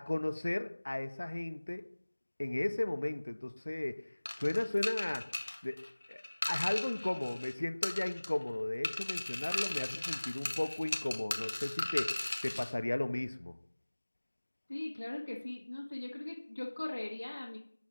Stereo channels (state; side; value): inverted; both; correlation -1.00